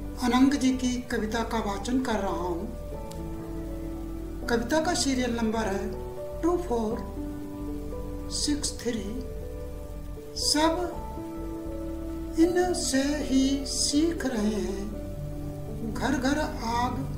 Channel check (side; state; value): both; identical; correlation 1.00